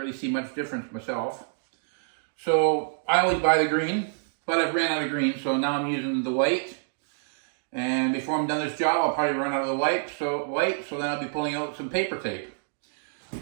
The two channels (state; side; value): silent; left; digital silence